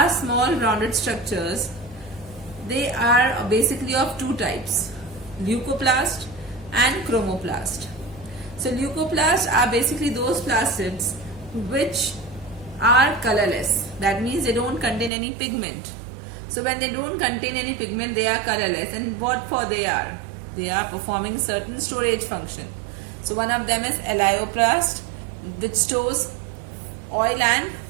small rounded structures. They are basically of two types, leucoplast and chromoplast. So leucoplasts are basically those plastids which are colorless. That means they don't contain any pigment. So when they don't contain any pigment, they are colorless. And what for they are? They are performing certain storage function. So one of them is elaioplast, which stores oil and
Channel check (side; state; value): left; drops out; at 15.1 s